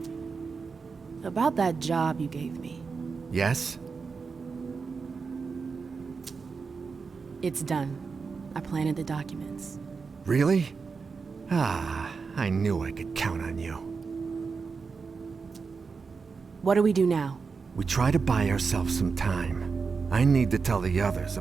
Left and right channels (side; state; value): left; quieter; 5.0 dB